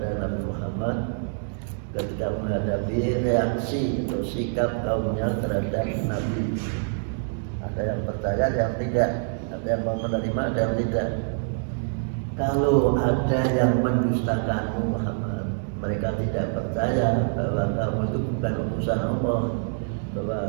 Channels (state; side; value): silent; left; digital silence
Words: Nabi Muhammad ketika menghadapi reaksi atau sikap kaumnya terhadap Nabi. Ada yang percaya, ada yang tidak, ada yang mau menerima, ada yang tidak. Kalau ada yang mendustakanmu Muhammad, mereka tidak percaya bahwa kamu itu bukan utusan Allah,